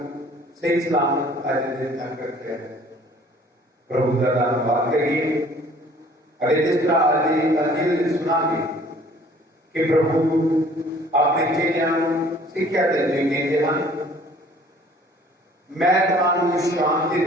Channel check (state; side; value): normal; both; correlation 0.54